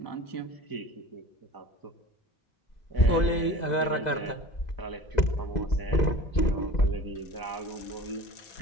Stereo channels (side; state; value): right; late; 2.0 ms